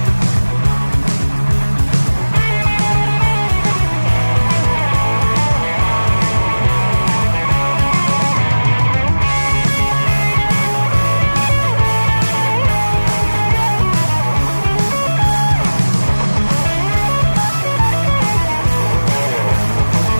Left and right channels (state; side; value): inverted; both; correlation -1.00